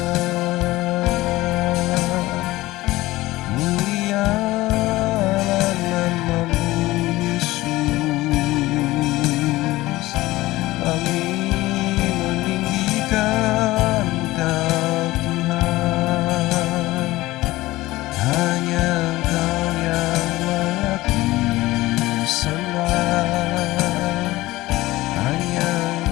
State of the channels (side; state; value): right; quieter; 18.3 dB